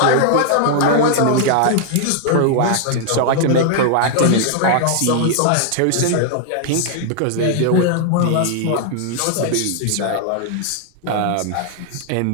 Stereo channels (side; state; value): both; different; correlation -0.01